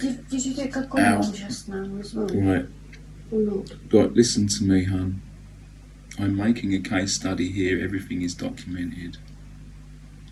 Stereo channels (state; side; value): identical; both; correlation 1.00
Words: Did you take cocodamol just now as well? Right. Or not? Right, listen to me, hon. I'm making a case study here. Everything is documented.